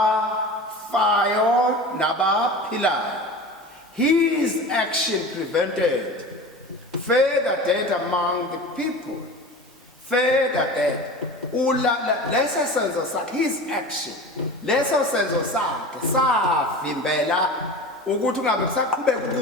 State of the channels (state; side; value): normal; both; correlation 0.34